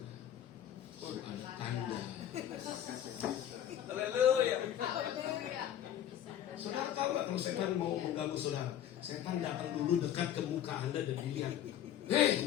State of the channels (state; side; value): quieter; right; 10.8 dB